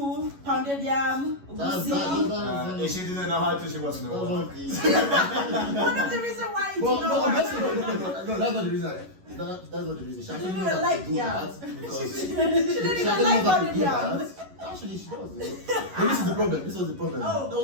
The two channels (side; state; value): left; late; 11 ms